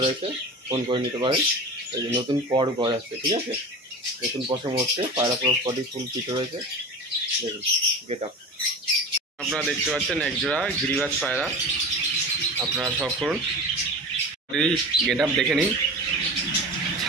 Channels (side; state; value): both; normal; correlation 0.32